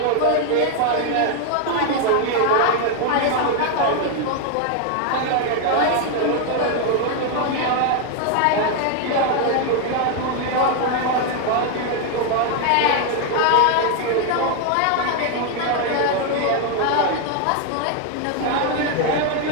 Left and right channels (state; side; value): different; both; correlation 0.01